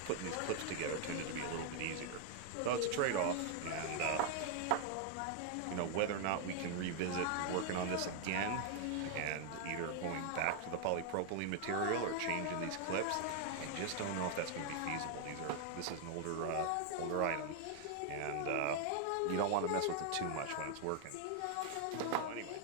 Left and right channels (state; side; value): different; both; correlation 0.00